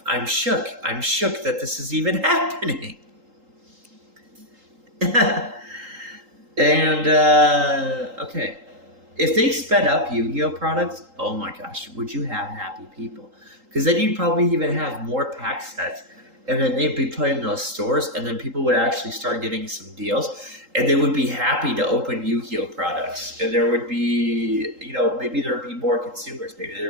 shook. I'm shook that this is even happening. And okay, if they sped up Yu-Gi-Oh products, oh my gosh, would you have happy people? Because then you'd probably even have more pack sets, and then they'd be put in those stores, and then people would actually start getting some deals, and they would be happy to open Yu-Gi-Oh products, and there would be, maybe there would be more consumers,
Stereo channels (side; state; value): left; late; 3.8 ms